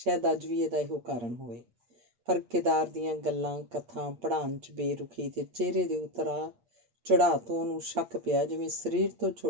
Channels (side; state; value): left; late; 8.8 ms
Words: ਅੱਜ ਵੀ ਇਹਦਾ ਇਹੋ ਕਾਰਨ ਹੋਵੇ। ਪਰ ਕੇਦਾਰ ਦੀਆਂ ਗੱਲਾਂ ਕਥਾ ਪੜ੍ਹਾਉਣ 'ਚ ਬੇਰੁਖੀ ਤੇ ਚਿਹਰੇ ਦੇ ਉਤਰਾਅ ਚੜ੍ਹਾਅ ਤੋਂ ਉਹਨੂੰ ਸ਼ੱਕ ਪਿਆ ਜਿਵੇਂ ਸਰੀਰ ਤੋਂ